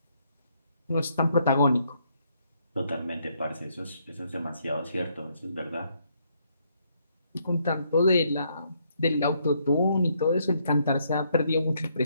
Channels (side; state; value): both; inverted; correlation -0.72